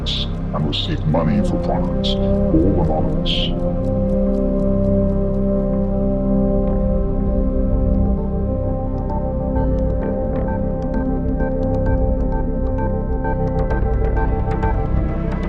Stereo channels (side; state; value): both; identical; correlation 1.00